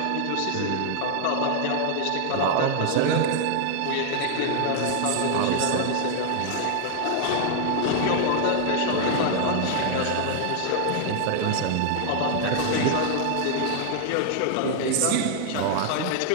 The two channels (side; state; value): both; different; correlation 0.00